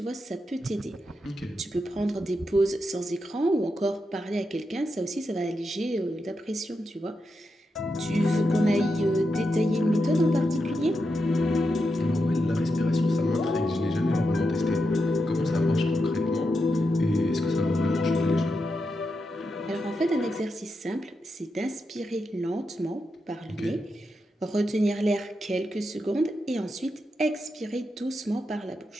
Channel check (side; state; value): both; normal; correlation 0.86